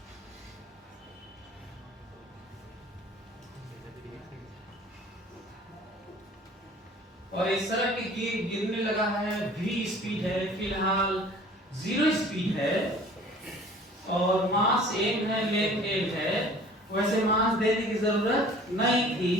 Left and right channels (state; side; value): normal; both; correlation 0.49